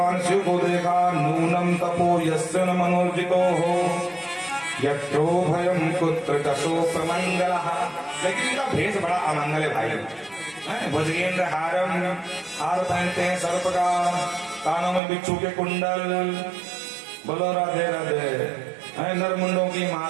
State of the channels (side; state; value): left; drops out; at 15.0 s